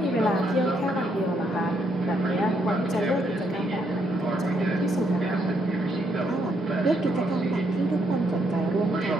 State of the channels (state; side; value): normal; both; correlation 0.74